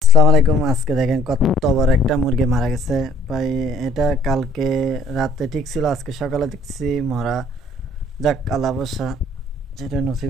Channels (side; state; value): both; normal; correlation 0.59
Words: আসসালামু আলাইকুম। আজকে দেখেন কত বড় একটা মুরগি মারা গেছে ভাই। এটা কালকে রাতে ঠিক ছিল, আজকে সকালে দেখছি মরা। যাক, আল্লাহ ভরসা, যেটা